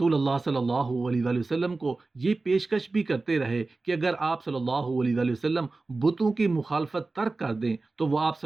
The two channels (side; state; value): left; quieter; 3.5 dB